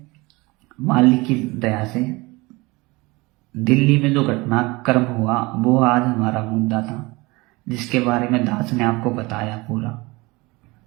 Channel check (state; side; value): quieter; left; 23.5 dB